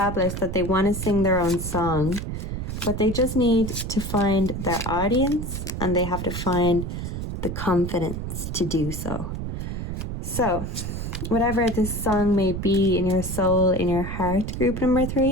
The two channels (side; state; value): right; noise; rumble, 5 dB below the sound